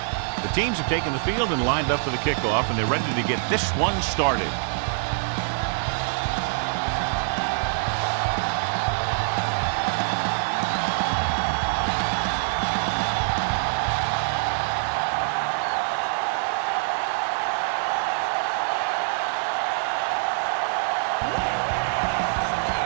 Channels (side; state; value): left; silent; digital silence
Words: The teams have taken the field and lined up for the kickoff, and they're ready to get this one started.